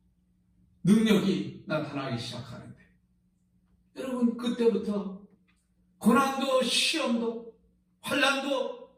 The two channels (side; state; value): both; identical; correlation 1.00